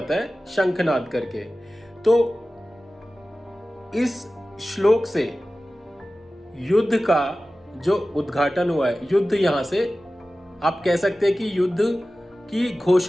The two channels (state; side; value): normal; both; correlation 0.96